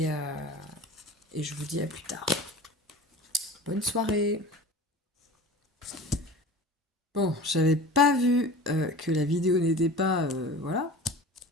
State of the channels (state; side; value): normal; both; correlation 0.38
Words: je vous dis à plus tard. Bonne soirée. Bon, j'avais pas vu que la vidéo n'était pas... voilà.